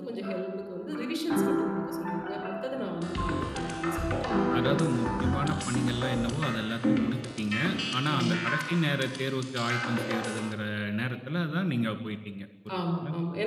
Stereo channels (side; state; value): both; identical; correlation 1.00